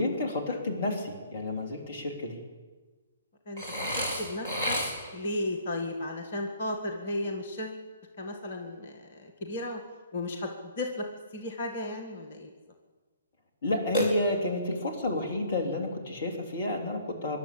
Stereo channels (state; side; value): inverted; both; correlation -0.57